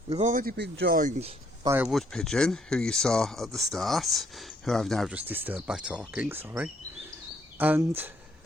We've already been joined by a wood pigeon who you saw at the start, who I've now just disturbed by talking, sorry. And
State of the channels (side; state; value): both; normal; correlation 0.68